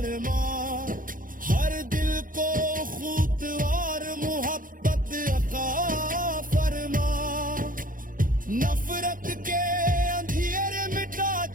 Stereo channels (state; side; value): late; left; 0.40 ms